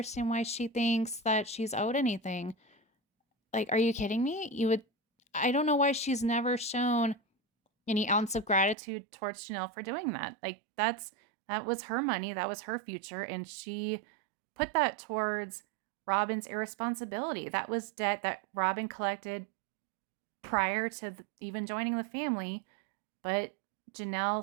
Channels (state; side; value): drops out; left; at 8.8 s